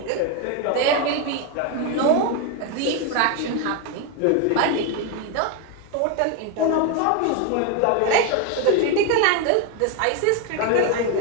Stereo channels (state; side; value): different; both; correlation 0.02